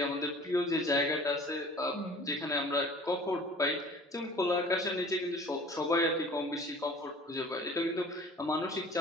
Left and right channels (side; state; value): both; normal; correlation 0.47